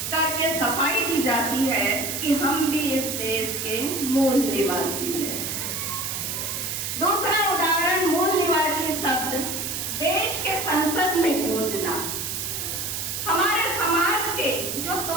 करके सफाई दी जाती है कि हम भी इस देश के मूल निवासी हैं। दूसरा उदाहरण मूल निवासी शब्द देश के संसद में गूंजना। हमारे समाज के जो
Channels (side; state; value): right; noise; hiss, 4 dB below the sound